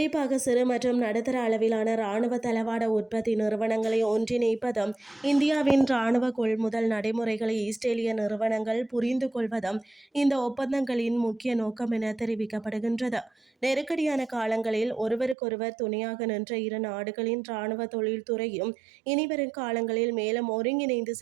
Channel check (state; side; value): drops out; left; at 15.4 s